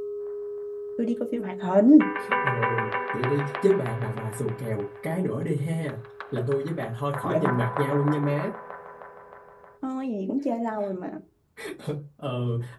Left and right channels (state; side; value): identical; both; correlation 1.00